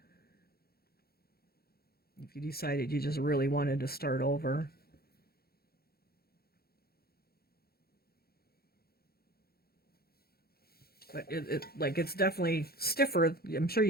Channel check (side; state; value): right; late; 0.45 ms